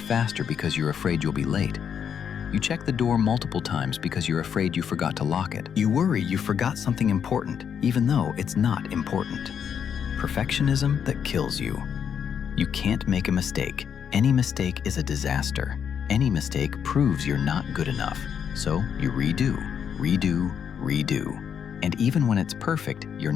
faster because you're afraid you'll be late. You check the door multiple times because you're afraid you forgot to lock it. You worry you forgot something important, even though it's not important. Perfectionism that kills you. You can't make a mistake. Any mistake is a disaster. Any mistake proves you're not good enough. So you redo, redo, redo. And even when it's perfect, you're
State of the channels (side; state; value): right; quieter; 7.8 dB